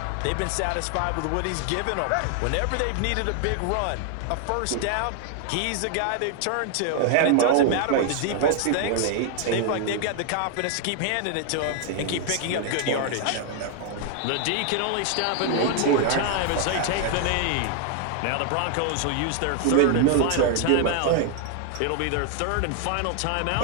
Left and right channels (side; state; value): both; different; correlation 0.00